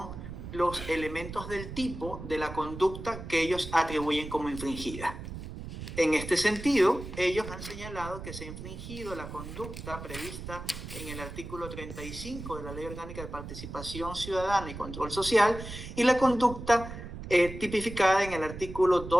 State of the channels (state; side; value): noise; right; rumble, 10 dB below the sound